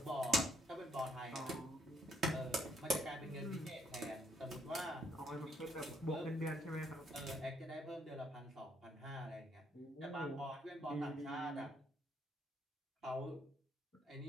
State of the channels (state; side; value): normal; both; correlation 0.70